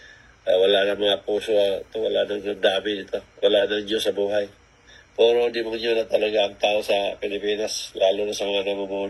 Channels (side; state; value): both; identical; correlation 1.00